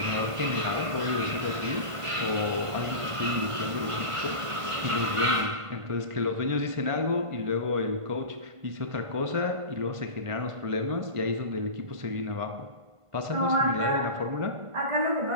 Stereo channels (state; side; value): late; left; 1.5 ms